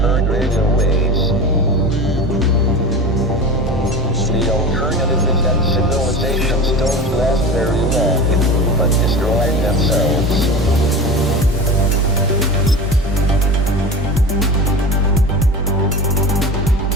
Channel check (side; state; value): both; normal; correlation 0.30